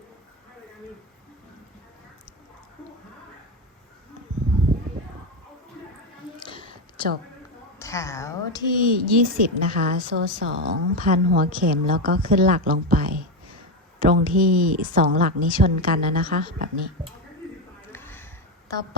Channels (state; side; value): normal; both; correlation 0.12